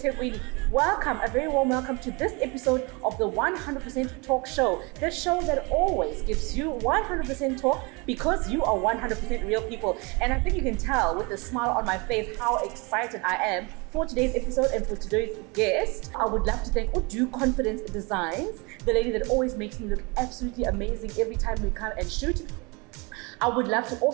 Welcome, a very warm welcome to this episode of the 100% Talk Show. The show that always gives you 100% talk because you are 100% real people. And I think you can tell with the smile on my face how excited I am for today's episode and for today's guest. I would love to thank Udu Confidence Designs, the lady that always makes me look absolutely amazing every time we come and shoot. I would love to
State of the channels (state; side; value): quieter; left; 28.4 dB